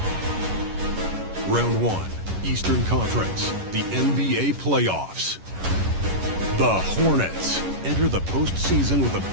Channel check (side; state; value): left; late; 11 ms